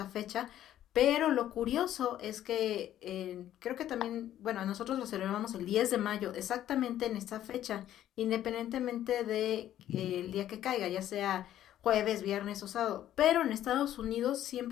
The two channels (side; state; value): right; quieter; 12.0 dB